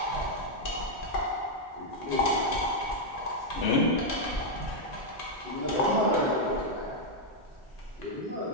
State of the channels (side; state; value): both; normal; correlation -0.02